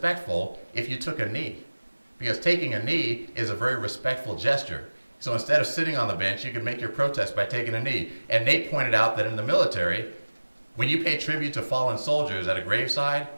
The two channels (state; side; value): inverted; both; correlation -1.00